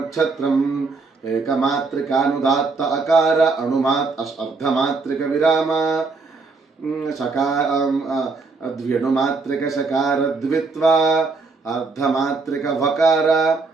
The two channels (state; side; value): quieter; left; 4.1 dB